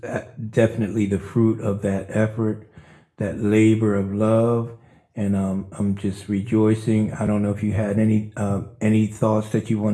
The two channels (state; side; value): identical; both; correlation 1.00